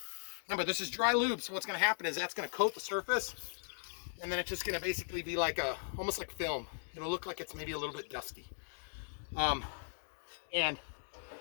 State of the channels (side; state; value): right; silent; digital silence